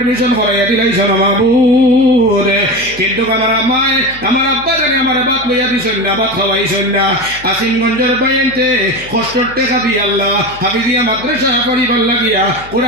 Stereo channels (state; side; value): noise; left; hum, 19 dB below the sound